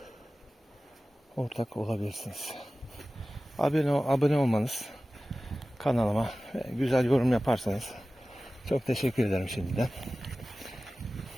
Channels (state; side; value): normal; both; correlation 0.96